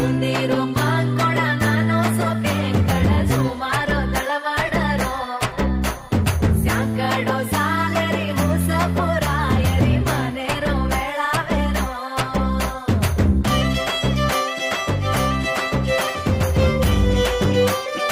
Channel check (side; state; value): both; identical; correlation 1.00